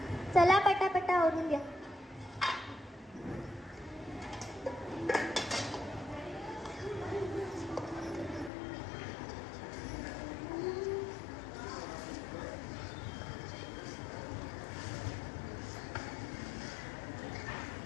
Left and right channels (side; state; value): right; drops out; at 8.5 s